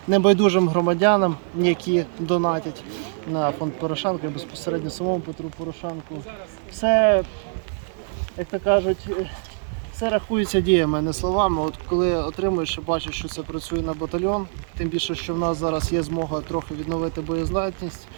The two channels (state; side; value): silent; left; digital silence